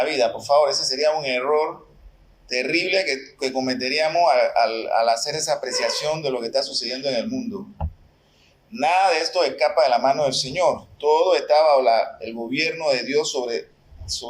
vida. Por favor, ese sería un error terrible que cometeríamos al hacer esa apreciación de lo que está sucediendo en el mundo. Nada de esto escapa de la mano del Señor. Todo está bajo el gobierno de Dios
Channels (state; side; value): identical; both; correlation 1.00